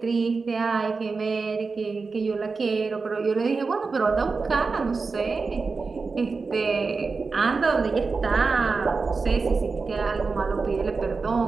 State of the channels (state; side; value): quieter; left; 4.4 dB